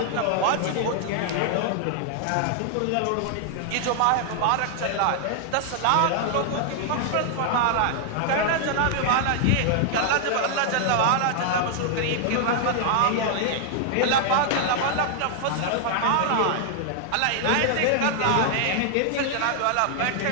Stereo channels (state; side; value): different; both; correlation -0.01